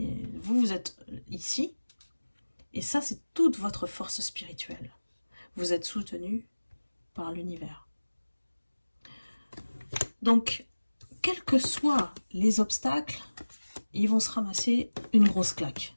vous êtes ici. Et ça, c'est toute votre force spirituelle. Vous êtes soutenu par l'univers. Donc, quels que soient les obstacles, ils vont se ramasser une grosse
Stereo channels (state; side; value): inverted; both; correlation -1.00